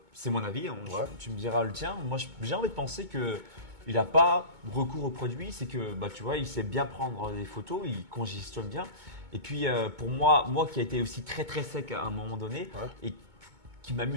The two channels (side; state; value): left; late; 2.2 ms